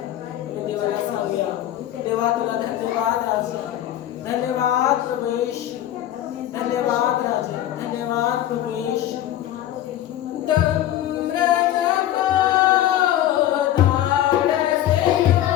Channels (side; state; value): right; quieter; 12.6 dB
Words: देवाला सांगूया, देवा तुला धन्यवाद राजा, धन्यवाद प्रभुश, धन्यवाद राजा, धन्यवाद प्रभुश.